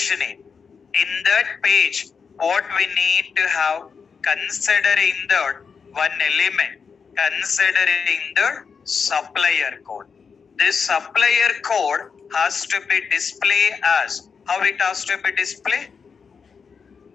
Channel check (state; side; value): quieter; right; 5.8 dB